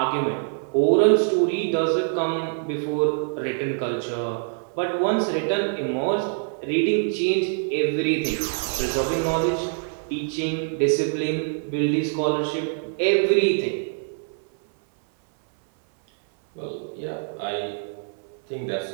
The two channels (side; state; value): left; silent; 59 dB below the other